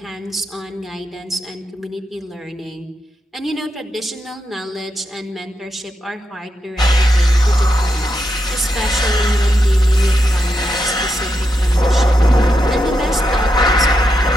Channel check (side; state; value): both; normal; correlation 0.84